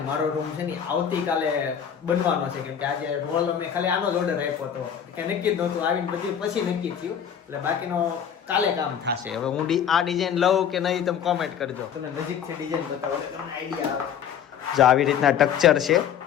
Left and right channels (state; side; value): quieter; right; 8.5 dB